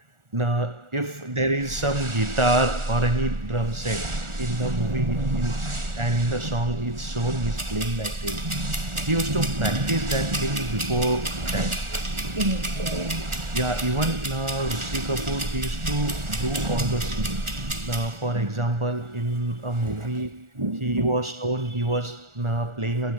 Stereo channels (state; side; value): late; left; 1.4 ms